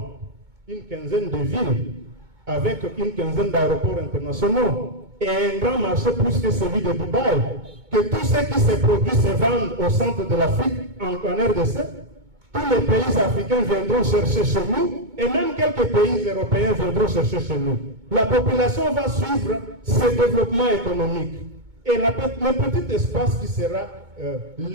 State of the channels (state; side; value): late; left; 2.2 ms